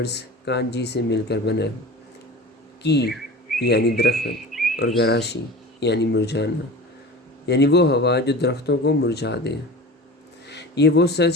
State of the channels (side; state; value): both; normal; correlation 0.35